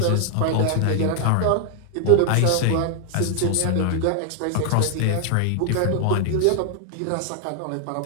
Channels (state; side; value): different; both; correlation 0.00